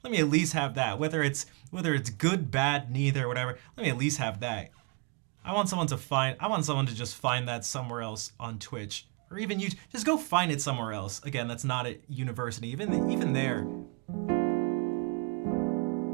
Let me at least have that. Whether it's good, bad, neither, whatever. Let me at least have that. I want someone to just find that somewhere else on Twitch, or even you. Just go find it somewhere else. Again, that's not at university. Even there.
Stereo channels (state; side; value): quieter; left; 34.1 dB